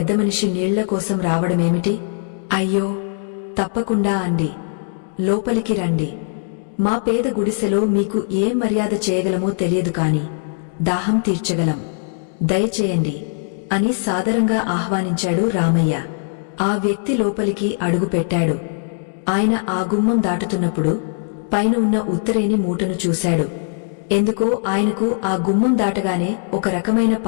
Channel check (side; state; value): right; silent; digital silence